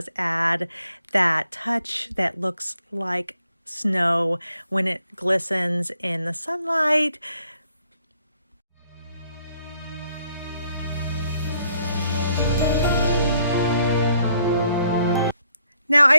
add that touch that looks like snow when it glistens in the sunlight. Now, I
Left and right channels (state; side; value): inverted; both; correlation -0.70